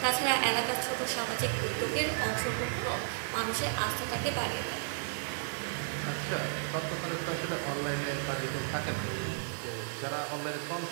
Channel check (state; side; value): silent; left; digital silence